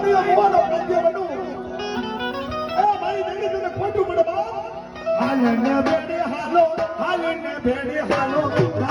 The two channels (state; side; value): identical; both; correlation 1.00